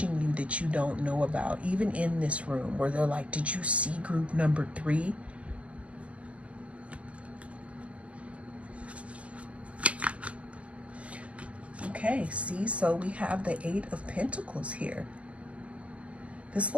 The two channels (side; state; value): left; late; 0.064 ms